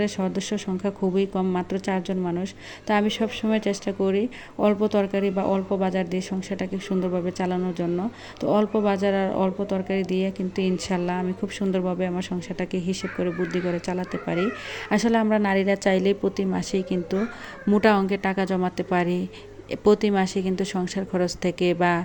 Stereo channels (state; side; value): identical; both; correlation 1.00